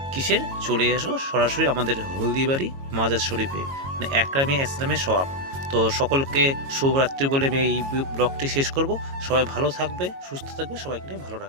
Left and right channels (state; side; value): late; left; 22 ms